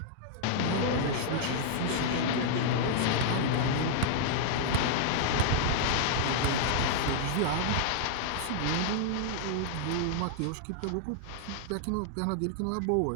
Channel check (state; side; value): different; both; correlation -0.01